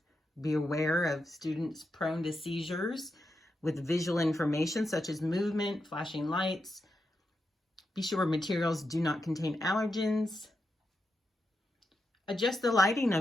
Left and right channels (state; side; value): normal; both; correlation 0.86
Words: be aware of students prone to seizures with visual information such as movement, flashing lights. Be sure materials do not contain allergens. Adjust the lighting